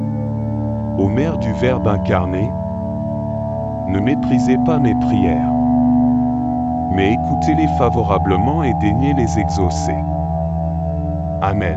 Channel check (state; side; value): identical; both; correlation 1.00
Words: Ô Mère du Verbe incarné, ne méprisez pas mes prières, mais écoutez-les favorablement et daignez les exaucer.